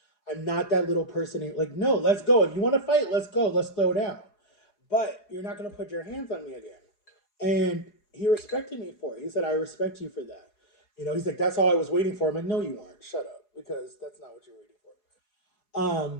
I'm not that little person. Like, no, let's go. If you want to fight, let's go. Let's throw down. But you're not going to put your hands on me again. And he respected me for it. He said, I respect you for that. He's like, that's all I was waiting for. I'm like, no, you weren't. Shut up. Because that's not what you're waiting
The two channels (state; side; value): late; right; 4.8 ms